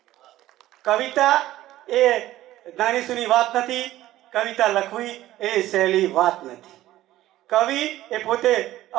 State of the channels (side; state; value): left; quieter; 14.9 dB